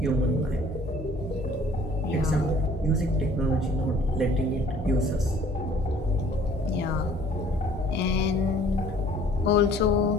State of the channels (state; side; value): normal; both; correlation 0.55